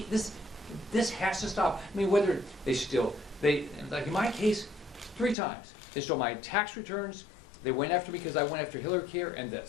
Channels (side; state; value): right; drops out; at 5.4 s